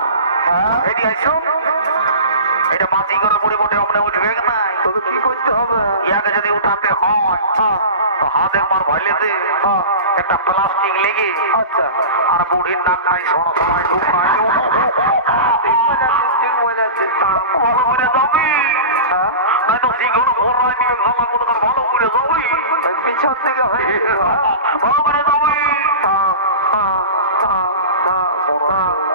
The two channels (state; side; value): inverted; both; correlation -0.31